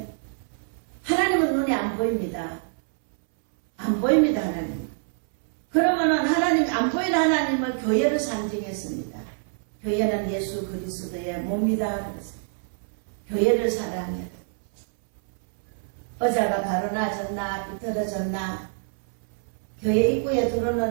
하나님은 눈에 안 보입니다. 안 보입니다. 하나님. 그러면은 하나님 안 보이는 하나님을 교회를 상징했습니다. 교회는 예수 그리스도의 몸이다 그랬어요. 교회를 사랑해라. 의자가 바로 나졌나 비틀어졌나 교회 입구에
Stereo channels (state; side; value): silent; left; 61 dB below the other